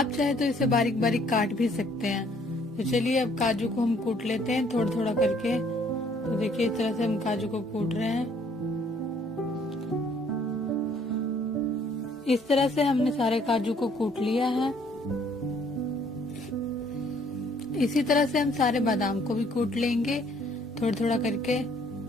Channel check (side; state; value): both; normal; correlation 0.62